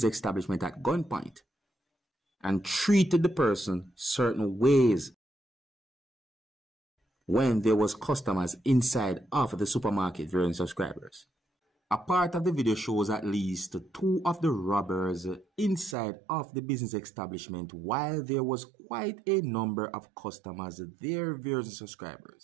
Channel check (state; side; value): drops out; left; at 16.0 s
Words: establishment at gunpoint and treated the person certain ways. when there was customers inside of the supermarket viewing subscribers. A part of the video shows at least 2 of the robbers inside of the business establishment while there was quite a number of customers there viewing